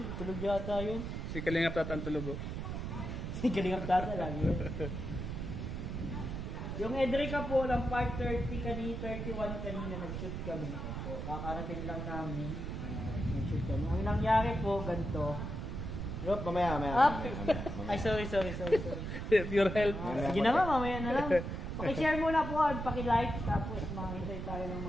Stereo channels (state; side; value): noise; right; rumble, 5 dB below the sound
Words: tulog yata yun. Si Kalingap tatantulog oh. Kalingap tata lang yun. Yung Edrica po, lang part 30 31 kanina, nag-shoot kami. So, kakarating lang namin. Nag-shoot kami. Ang nangyari po, ganito. Yup, mamaya. Ay, sorry. Pure health. Sige na nga, mamaya na lang. Paki-share muna po, paki-like, tapos makahintay tayo ng